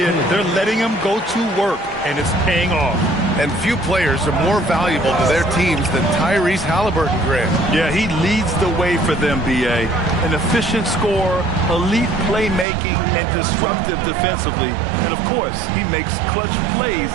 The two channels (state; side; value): drops out; left; at 12.7 s